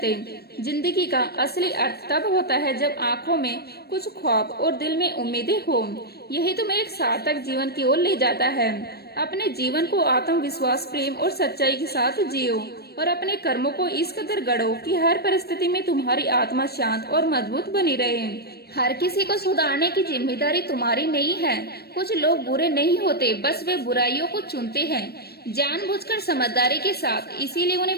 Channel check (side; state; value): right; late; 0.47 ms